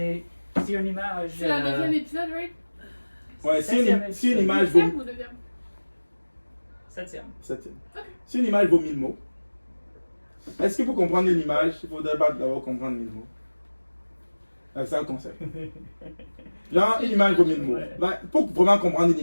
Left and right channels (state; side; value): inverted; both; correlation -1.00